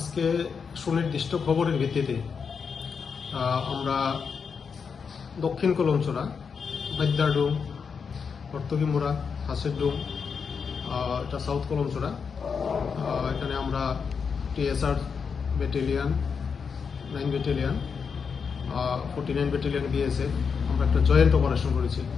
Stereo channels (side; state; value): right; quieter; 6.0 dB